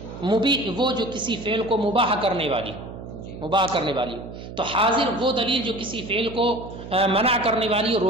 مبیح وہ جو کسی فعل کو مباح کرنے والی ہو، مباح کرنے والی ہو۔ تو حاضر وہ دلیل جو کسی فعل کو منع کرنے والی ہو،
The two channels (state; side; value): noise; right; hum, 12 dB below the sound